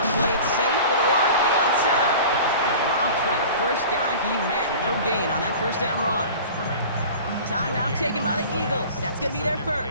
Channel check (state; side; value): inverted; both; correlation -0.39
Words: play it safe with a run to the outside. Dropped by the first guy he met. No gain on that first down run. Timeout taken by the Eagles. That's going to be their